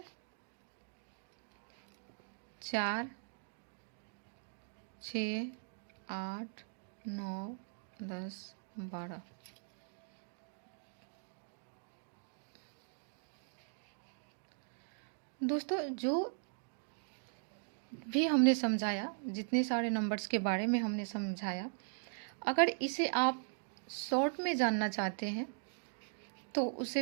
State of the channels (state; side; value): silent; left; digital silence